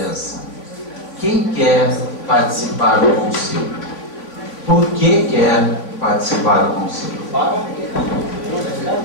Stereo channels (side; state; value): right; late; 3.5 ms